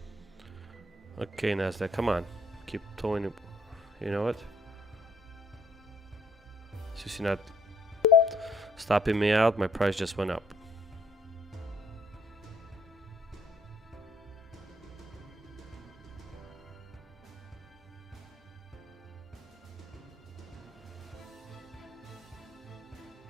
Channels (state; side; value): normal; both; correlation 0.66